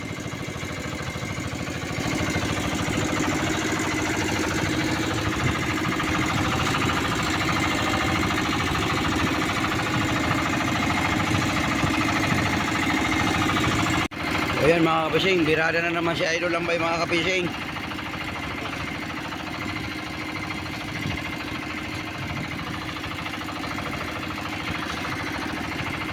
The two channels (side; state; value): both; identical; correlation 1.00